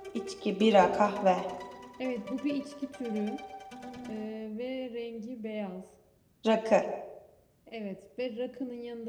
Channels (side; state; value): both; identical; correlation 1.00